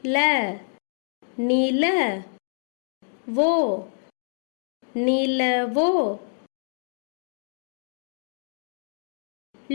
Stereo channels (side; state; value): right; silent; digital silence